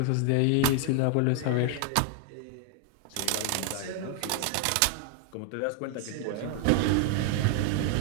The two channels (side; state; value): both; different; correlation 0.00